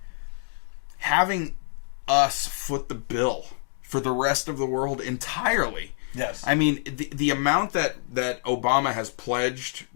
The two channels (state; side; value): silent; right; digital silence